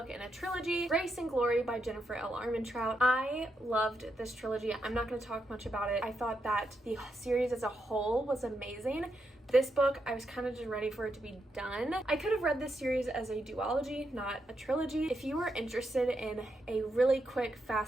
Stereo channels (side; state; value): both; normal; correlation 0.82